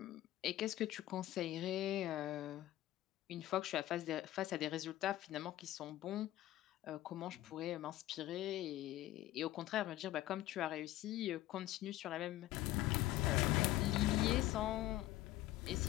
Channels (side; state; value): right; quieter; 15.1 dB